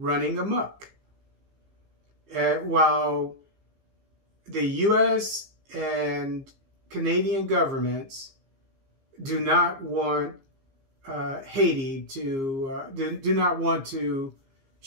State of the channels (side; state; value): left; late; 15 ms